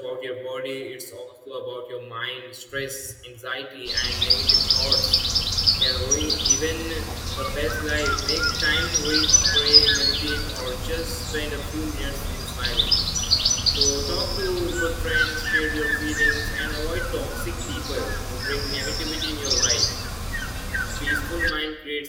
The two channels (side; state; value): both; identical; correlation 1.00